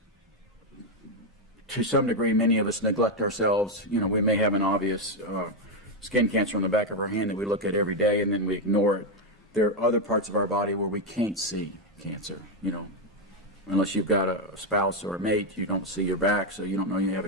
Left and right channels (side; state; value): both; normal; correlation 0.04